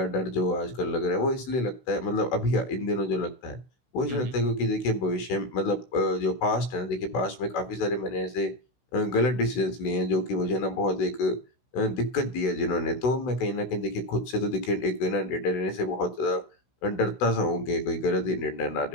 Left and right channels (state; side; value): late; right; 16 ms